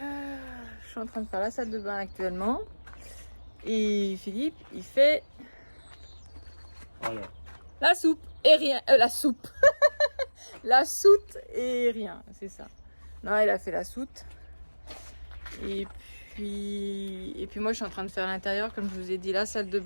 Je suis en train de faire la salle de bain actuellement. Et Philippe, il fait Voilà. la soupe et rien. La soupe. La soute et rien, c'est ça. Non, il a fait la soute. Et puis moi je suis en train de faire l'intérieur, comme je vous ai dit, la salle de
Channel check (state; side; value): inverted; both; correlation -1.00